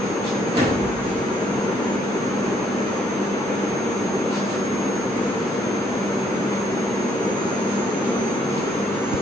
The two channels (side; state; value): both; normal; correlation 0.68